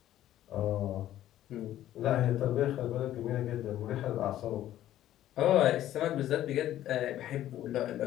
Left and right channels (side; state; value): right; quieter; 12.9 dB